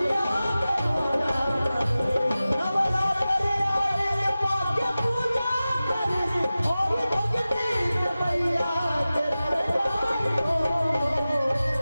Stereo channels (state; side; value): inverted; both; correlation -0.96